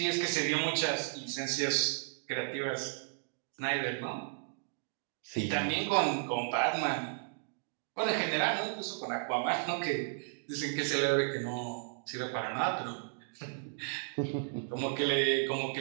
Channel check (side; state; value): left; silent; digital silence